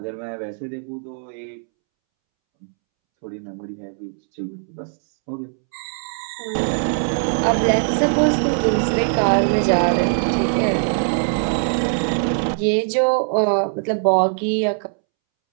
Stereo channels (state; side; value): silent; left; 65 dB below the other